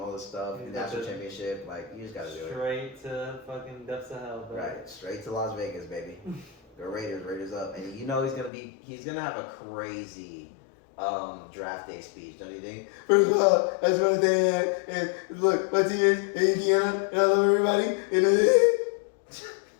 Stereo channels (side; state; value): right; drops out; at 8.5 s